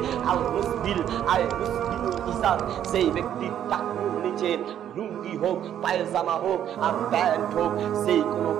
আল মুসবিল। আয় মুসবিলুল ইজার, সেই ব্যক্তির টাকুর নিচে লুঙ্গি হোক, পায়জামা হোক আর প্যান্ট হোক, সেই কোনো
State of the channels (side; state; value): left; quieter; 10.3 dB